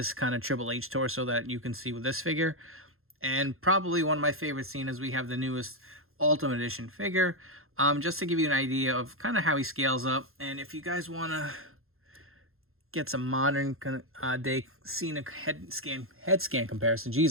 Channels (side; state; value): left; late; 0.61 ms